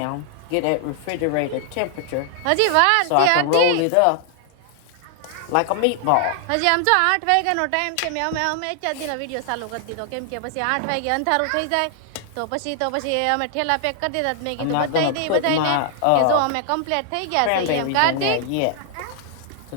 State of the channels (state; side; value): different; both; correlation 0.00